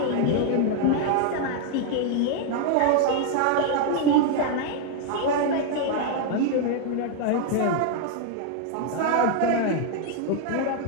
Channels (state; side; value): different; both; correlation 0.00